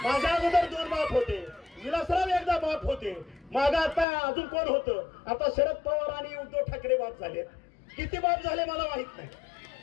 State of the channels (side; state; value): right; drops out; at 4.0 s